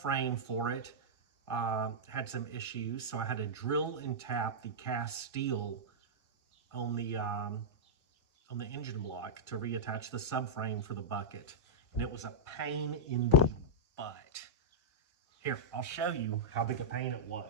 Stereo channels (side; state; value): both; normal; correlation -0.10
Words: for it had some issues, so I had to drill and tap the cast steel on the engine block to reattach the subframe for the bucket, and it was a pain in the butt. Here, I'll show you how big a pain it